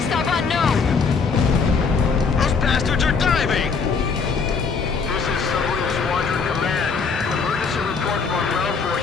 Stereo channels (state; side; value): quieter; right; 5.2 dB